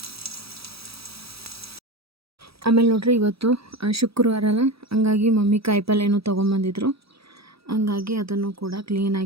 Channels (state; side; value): late; left; 0.77 ms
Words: ಆಮೇಲೆ ನೋಡ್ರಿ, ಇವತ್ತು ಶುಕ್ರವಾರ ಅಲ್ಲ, ಹಂಗಾಗಿ ಮಮ್ಮಿ ಕಾಯಿಪಲ್ಯನೂ ತೊಗೊಂಬಂದಿದ್ರು. ಹಂಗಾಗಿ ಅದನ್ನು ಕೂಡ